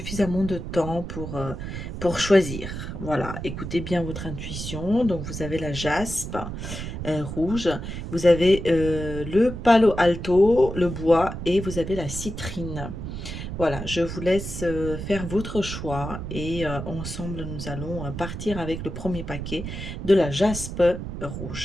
de temps pour choisir. Voilà, écoutez bien votre intuition. Donc vous avez la jaspe rouge, vous avez le palo alto, le bois et vous avez la citrine. Voilà, je vous laisse faire votre choix et ensemble nous allons partir avec le premier paquet de la jaspe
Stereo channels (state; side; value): noise; right; rumble, 7 dB below the sound